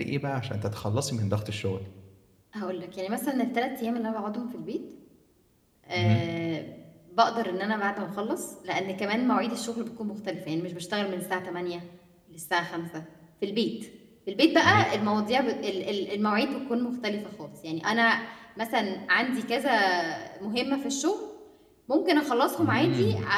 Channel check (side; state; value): both; identical; correlation 1.00